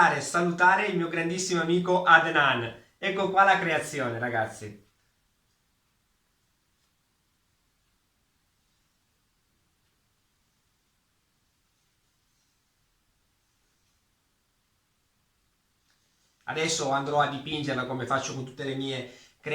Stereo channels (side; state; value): both; identical; correlation 1.00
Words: e salutare il mio grandissimo amico Adnan. Ecco qua la creazione, ragazzi. Adesso andrò a dipingerla come faccio con tutte le mie